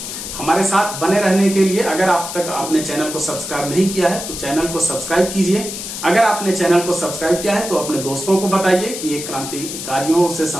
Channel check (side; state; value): left; noise; hiss, 7 dB below the sound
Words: हमारे साथ बने रहने के लिए अगर आप तक अपने चैनल को सब्सक्राइब नहीं किया है तो चैनल को सब्सक्राइब कीजिए। अगर आपने चैनल को सब्सक्राइब किया है तो अपने दोस्तों को बताइए कि एक क्रांतिकारियों से